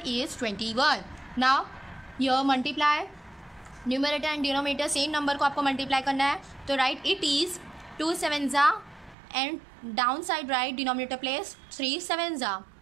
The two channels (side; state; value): left; drops out; at 9.2 s